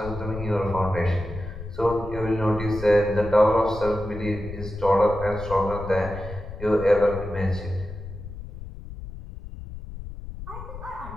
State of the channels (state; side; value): noise; left; rumble, 11 dB below the sound